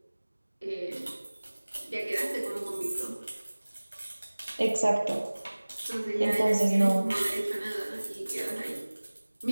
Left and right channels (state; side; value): inverted; both; correlation -1.00